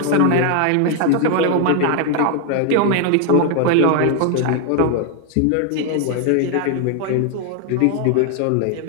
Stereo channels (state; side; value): different; both; correlation 0.00